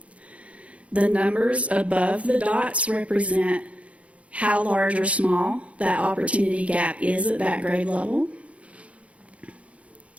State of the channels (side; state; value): left; late; 0.064 ms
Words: The numbers above the dots represent how large or small that opportunity gap is at that grade level.